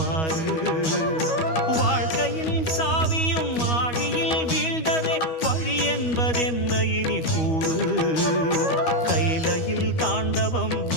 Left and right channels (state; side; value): late; right; 12 ms